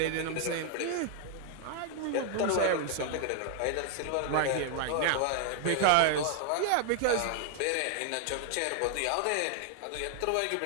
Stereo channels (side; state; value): both; different; correlation 0.00